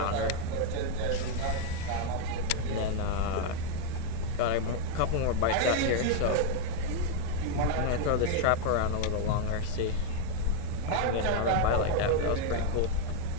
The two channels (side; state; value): both; different; correlation 0.00